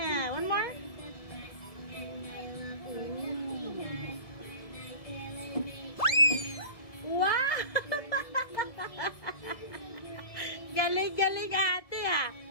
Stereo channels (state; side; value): late; right; 1.7 ms